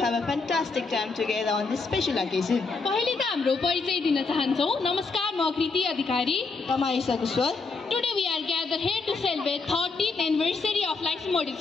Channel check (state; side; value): quieter; right; 4.2 dB